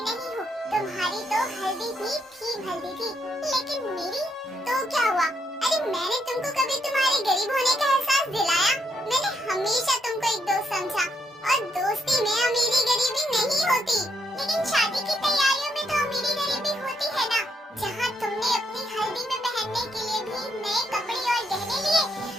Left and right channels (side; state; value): both; normal; correlation 0.77